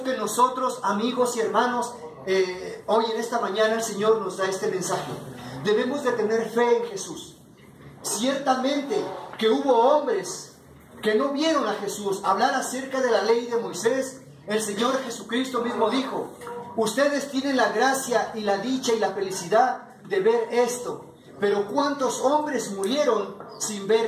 que nosotros, amigos y hermanos, hoy en esta mañana el Señor nos da este mensaje. Debemos de tener fe en Jesús. Ciertamente que hubo hombres que no vieron a Jesús hablar acerca de la ley de Moisés. El Señor Jesucristo mismo dijo: ustedes tienen la gracia y la dicha y la felicidad de ver esto. Pero ¿cuántos hombres murieron sin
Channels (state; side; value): identical; both; correlation 1.00